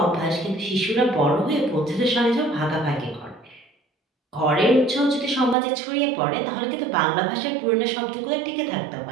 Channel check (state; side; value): drops out; left; at 5.6 s